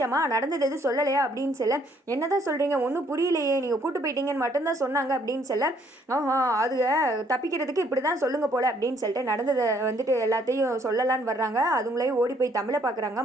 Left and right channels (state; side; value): normal; both; correlation 0.65